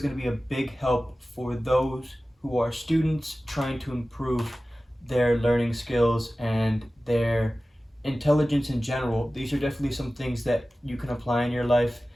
going to be a big help for those who are students trying to improve their learning skills and their intelligence in general. These are definitely some things that you can apply in your life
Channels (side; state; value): both; normal; correlation 0.96